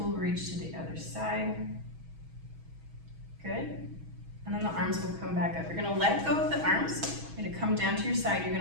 reach to the other side. Good. And then the arms will come back up. You're gonna let go of the arms. You're gonna come down to your side. You're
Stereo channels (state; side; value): late; left; 6.2 ms